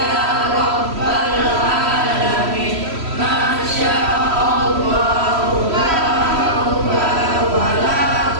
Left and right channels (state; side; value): late; left; 3.1 ms